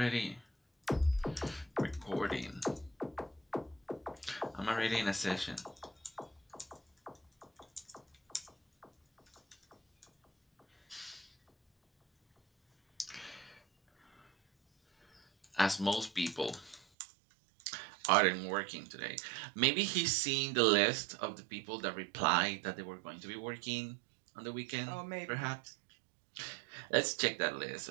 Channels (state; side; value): drops out; left; at 16.9 s